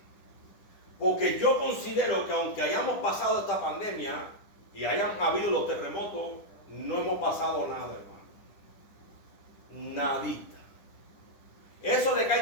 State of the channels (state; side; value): late; right; 10 ms